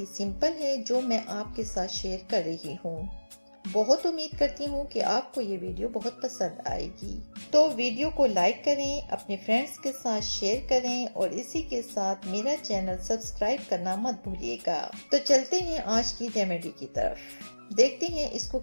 सिंपल है जो मैं आपके साथ शेयर कर रही हूँ। बहुत उम्मीद करती हूँ कि आपको ये वीडियो बहुत पसंद आएगी। तो वीडियो को लाइक करें, अपने फ्रेंड्स के साथ शेयर करें और इसी के साथ मेरा चैनल सब्सक्राइब करना मत भूलिएगा। तो चलते हैं आज की रेमेडी की तरफ, देखते हैं इसको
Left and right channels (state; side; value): inverted; both; correlation -1.00